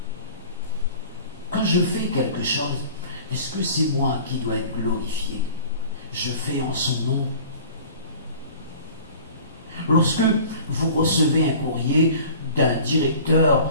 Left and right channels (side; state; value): both; inverted; correlation -0.44